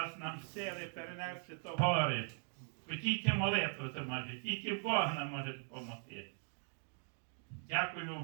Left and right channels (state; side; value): silent; left; 51 dB below the other